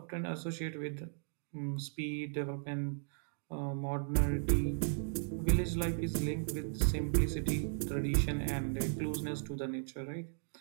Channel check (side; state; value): left; silent; digital silence